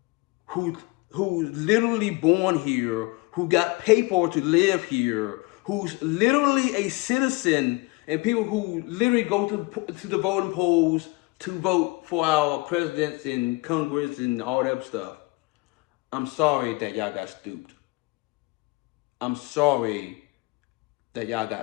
who's literally born here, who got paper to live here, who's literally a citizen, and people who literally go to the voting polls to vote for our presidents and Congress and all that stuff. I'm sorry that y'all got stooped. I'm sorry that y'all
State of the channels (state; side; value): quieter; right; 24.0 dB